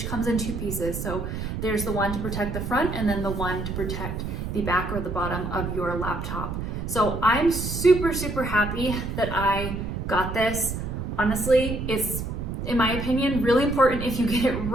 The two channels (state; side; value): noise; right; rumble, 4 dB below the sound